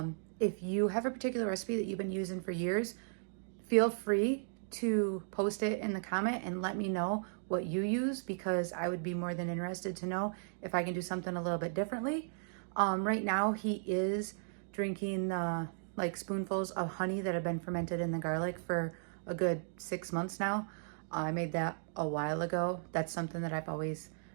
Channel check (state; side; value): silent; left; digital silence